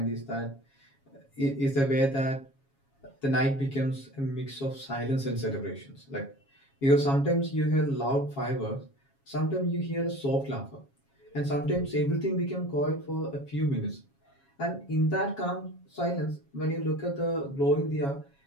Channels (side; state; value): right; late; 7.3 ms